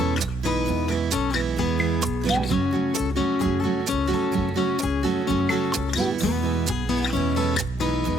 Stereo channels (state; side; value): normal; both; correlation 0.73